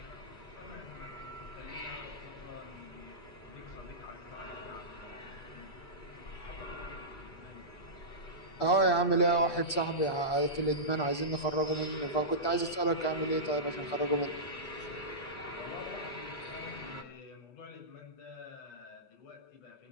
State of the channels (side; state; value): right; late; 8.3 ms